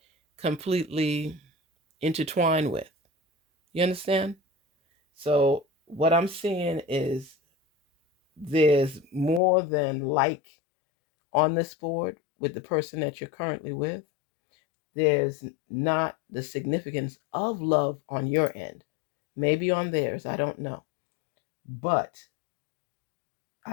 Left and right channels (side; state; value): right; drops out; at 9.4 s